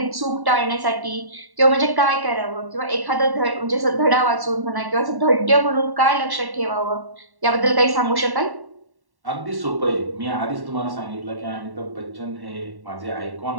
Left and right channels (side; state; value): left; late; 1.1 ms